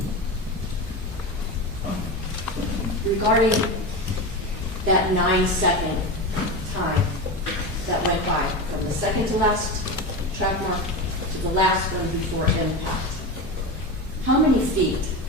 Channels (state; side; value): normal; both; correlation 0.22